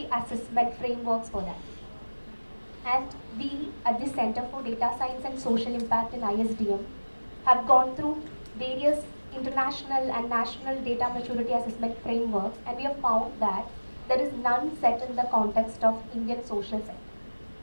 assessment frameworks for that. And we at the Center for Data Science and Social Impact in ISDM have gone through various international and national data maturity assessment frameworks, and we have found that there is none set in the context of Indian social sector.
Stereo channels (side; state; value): both; inverted; correlation -1.00